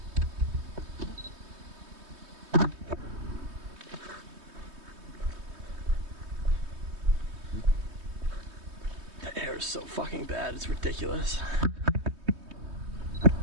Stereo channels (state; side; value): late; left; 3.2 ms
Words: The air is so fucking bad, it's ridiculous.